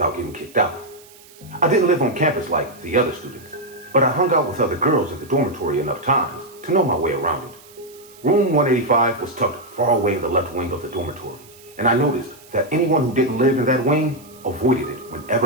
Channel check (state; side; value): noise; right; hiss, 24 dB below the sound